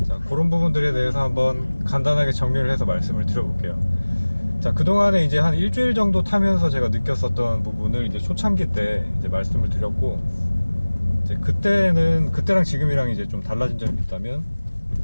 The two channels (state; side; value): inverted; both; correlation -1.00